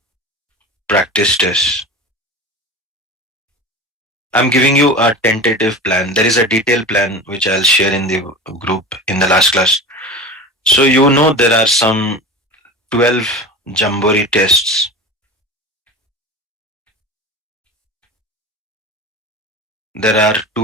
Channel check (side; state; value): both; normal; correlation 0.31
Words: practice test. I'm giving you a tentative plan. There is a detailed plan which I'll share in the group in the last class. So you know there are some 12 Jambori tests. There are